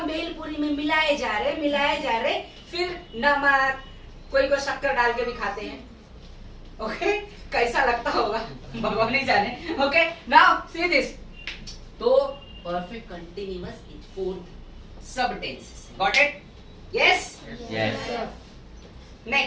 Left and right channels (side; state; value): both; identical; correlation 1.00